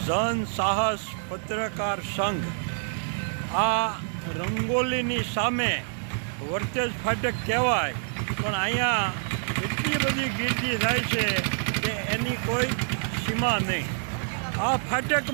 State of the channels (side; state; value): left; silent; digital silence